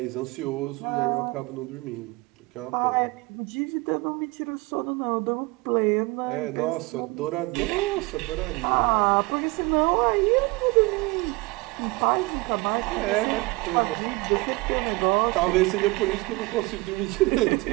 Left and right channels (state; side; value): quieter; left; 23.8 dB